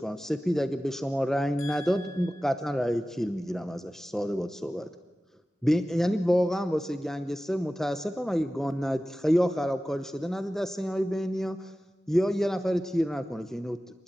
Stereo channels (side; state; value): both; normal; correlation 0.95